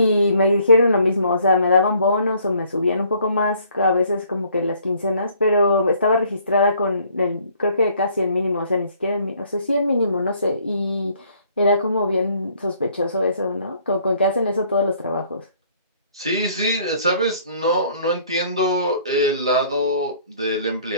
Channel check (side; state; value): both; inverted; correlation -0.61